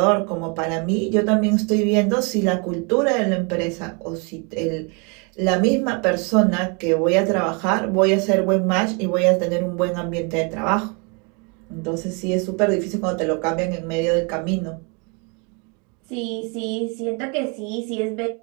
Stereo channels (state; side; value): quieter; left; 33.5 dB